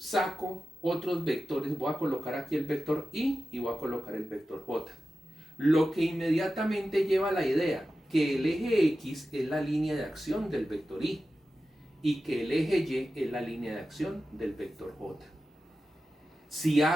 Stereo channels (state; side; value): normal; both; correlation 0.93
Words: otros vectores, voy a colocar aquí el vector I y voy a colocar el vector J. Lo que inmediatamente lleva a la idea que el eje X es la línea de acción del vector I y que el eje Y es la línea de acción del vector J. Si